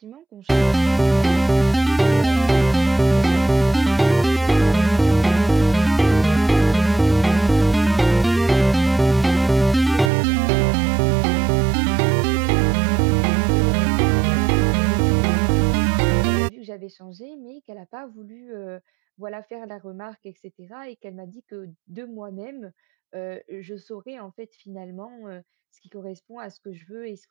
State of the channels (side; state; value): left; drops out; at 10.1 s